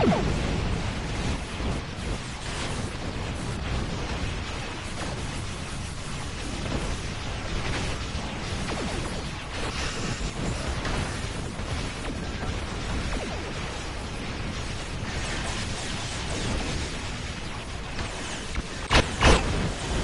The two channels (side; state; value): both; identical; correlation 1.00